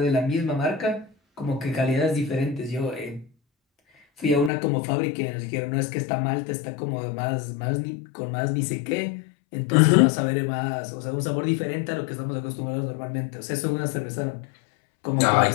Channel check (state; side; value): drops out; right; at 4.5 s